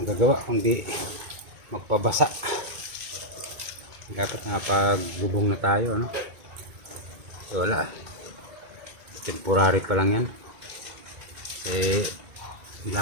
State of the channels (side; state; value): left; late; 2.2 ms